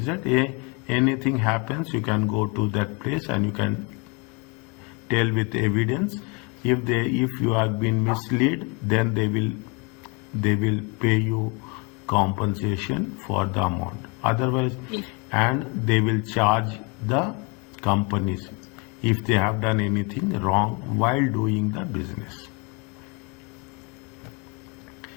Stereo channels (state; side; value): quieter; right; 31.4 dB